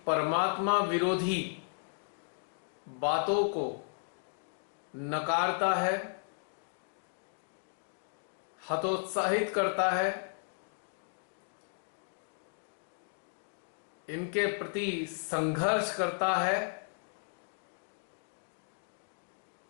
परमात्मा विरोधी बातों को नकारता है, हतोत्साहित करता है, इनके प्रति संघर्ष करता है,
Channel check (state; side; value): silent; right; digital silence